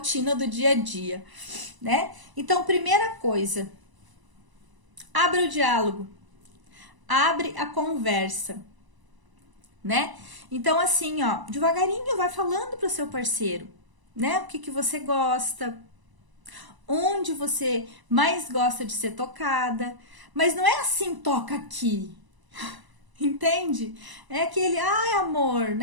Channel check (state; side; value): late; left; 1.0 ms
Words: do dia a dia, né? Então, primeira coisa, abre o diálogo, abre a conversa, né? Então, assim, ó, devagarinho vai falando pro seu parceiro, né? O que você gosta, onde você mais gosta de ser tocada, mas não é assim, toca aqui. Entende? É aquele, amor,